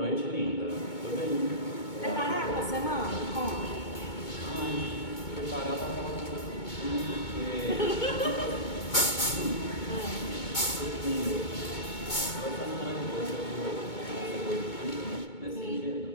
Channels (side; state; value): right; late; 2.2 ms